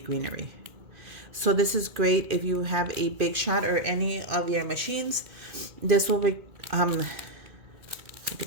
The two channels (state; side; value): late; left; 2.4 ms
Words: So this is great if you have a Big Shot or any of your machines. This will be look